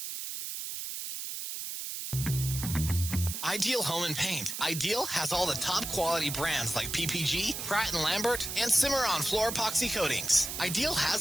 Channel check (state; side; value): noise; right; hiss, 6 dB below the sound